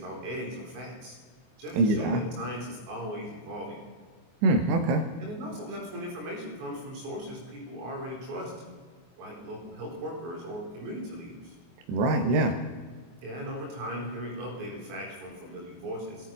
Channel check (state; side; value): late; left; 24 ms